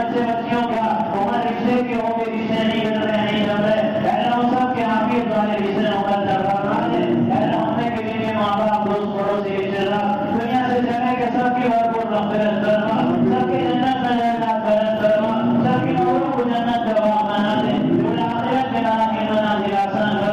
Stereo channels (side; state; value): both; identical; correlation 1.00